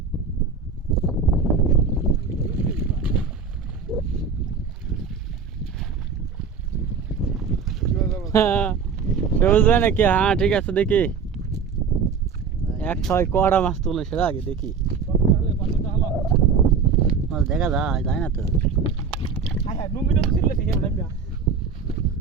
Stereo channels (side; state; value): left; quieter; 5.7 dB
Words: বুঝবে নাকি? হ্যাঁ ঠিক আছে দেখি এক ছয় কড়া মাছ তুলে সেটা আগে দেখি মাছ দেখা যায় না তো